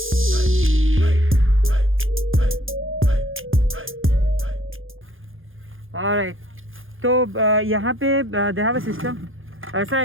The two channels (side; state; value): left; late; 0.59 ms